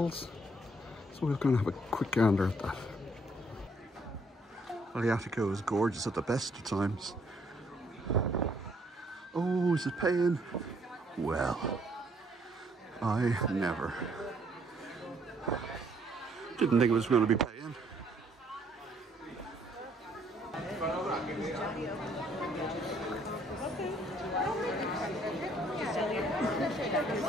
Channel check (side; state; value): both; normal; correlation 0.66